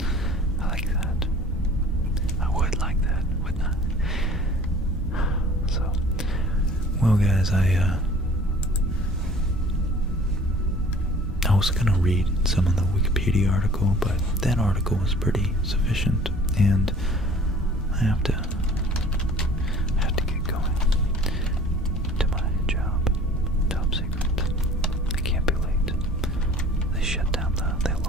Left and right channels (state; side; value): normal; both; correlation 0.49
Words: I like that. I would like that, wouldn't I? So, well guys, I was gonna read some of the Wikipedia article, but that article was pretty sufficient, and I have to get going to my job. Top secret. I can't be late. They